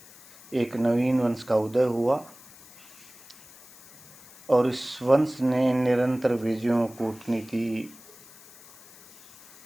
एक नवीन वंश का उदय हुआ और इस वंश ने निरंतर विजयों, कूटनीति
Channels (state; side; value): noise; left; hiss, 22 dB below the sound